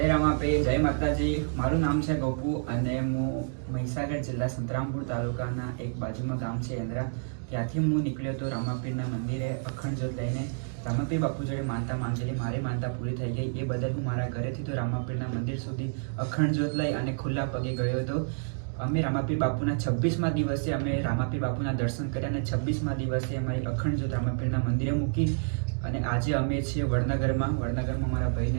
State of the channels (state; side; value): silent; left; digital silence